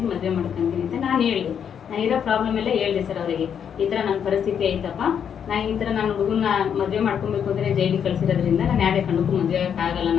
ಅಂತ ನಾನು ಹೇಳಿದೆ. ನಾನು ಇರೋ ಪ್ರಾಬ್ಲಮ್ ಎಲ್ಲ ಹೇಳಿದೆ ಸರ್ ಅವರಿಗೆ. ಈ ಥರ ನನ್ನ ಪರಿಸ್ಥಿತಿ ಐತಪ್ಪ, ನಾನು ಈ ಥರ ನಾನು ಹುಡುಗನ ಮದುವೆ ಮಾಡ್ಕೊಬೇಕು ಅಂದರೆ ಜೈಲಿಗೆ ಕಳಿಸಿರೋದ್ರಿಂದ ನಾನು ಯಾರೇ ಕಂಡಕ್ಕೂ ಮದುವೆ ಆಗೋಕ್ಕಾಗಲ್ಲ.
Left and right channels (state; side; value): quieter; right; 8.1 dB